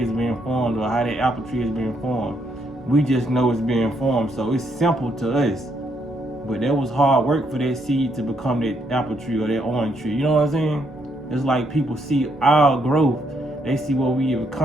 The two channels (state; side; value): normal; both; correlation 0.74